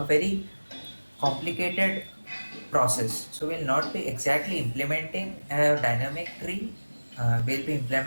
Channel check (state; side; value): inverted; both; correlation -1.00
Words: very complicated process. So we'll not be exactly implementing a dynamic tree. We'll be